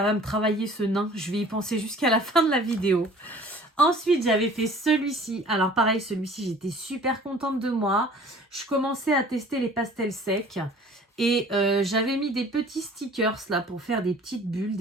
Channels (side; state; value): both; normal; correlation 0.49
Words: va me travailler ce nain. Je vais y penser jusqu'à la fin de la vidéo. Ensuite, j'avais fait celui-ci. Alors pareil, celui-ci, j'étais super contente de moi. Je commençais à tester les pastels secs. Et j'avais mis des petits stickers là pour faire des petites bulles,